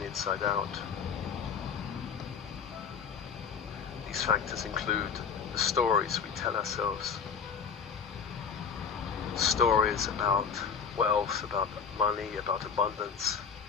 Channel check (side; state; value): right; quieter; 6.4 dB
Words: the inside out. These factors include the stories we tell ourselves. Stories about wealth, about money, about abundance.